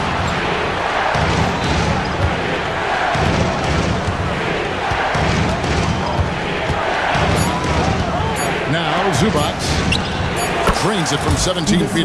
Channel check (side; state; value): both; identical; correlation 1.00